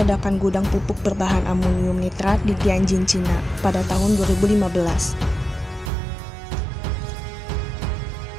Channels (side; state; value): left; drops out; at 5.9 s